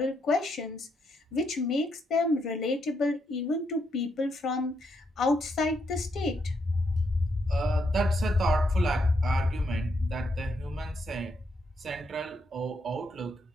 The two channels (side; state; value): both; normal; correlation 0.78